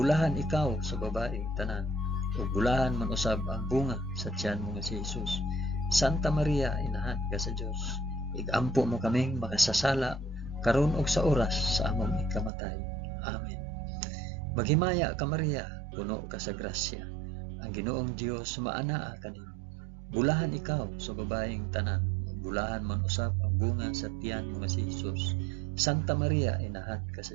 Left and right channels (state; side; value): drops out; left; at 12.5 s